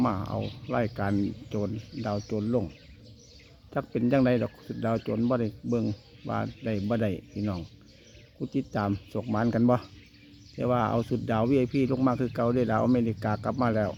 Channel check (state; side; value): identical; both; correlation 1.00